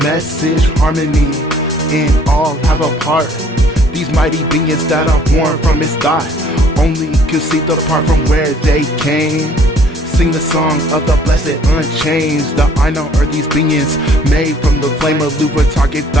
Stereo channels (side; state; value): both; normal; correlation 0.58